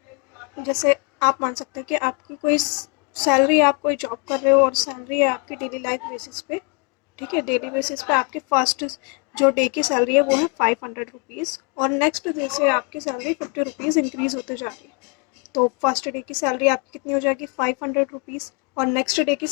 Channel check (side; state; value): right; quieter; 33.6 dB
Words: जैसे आप मान सकते हैं कि आपकी कोई सैलरी, आप कोई जॉब कर रहे हो और सैलरी है आपकी डेली लाइफ बेसिस पे, ठीक है। डेली बेसिस पे आपकी फर्स्ट जो डे की सैलरी है वो है 500 रुपीज़, और नेक्स्ट डे से आपकी सैलरी 50 रुपीज़ इंक्रीज़ होते जा रही है। तो फर्स्ट डे की सैलरी आपकी कितनी हो जाएगी 500 रुपीज़, और नेक्स्ट डे की